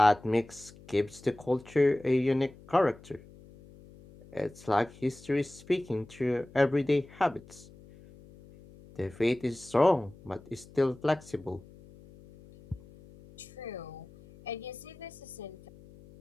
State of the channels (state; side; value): noise; left; hum, 22 dB below the sound